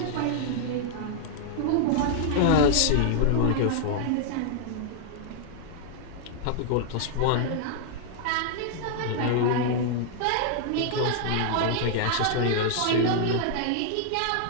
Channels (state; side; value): different; both; correlation -0.01